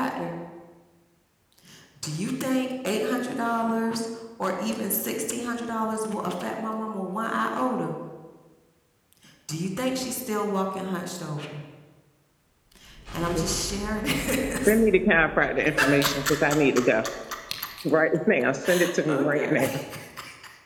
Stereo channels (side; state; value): both; identical; correlation 1.00